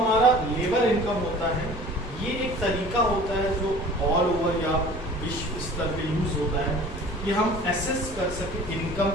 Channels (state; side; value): normal; both; correlation 0.45